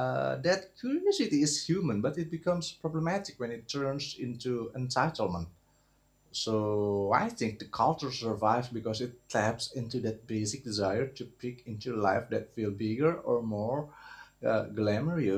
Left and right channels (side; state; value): both; identical; correlation 1.00